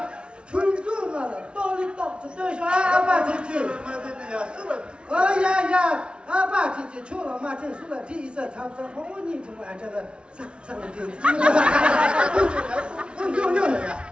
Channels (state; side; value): late; left; 0.057 ms